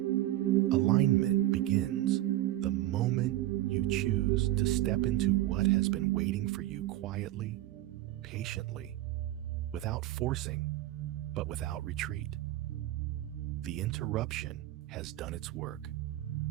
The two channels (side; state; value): left; quieter; 15.1 dB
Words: begins the moment you choose to step into what has been waiting for you quietly, patiently, without forcing, but without retreat. The interruption has done its work.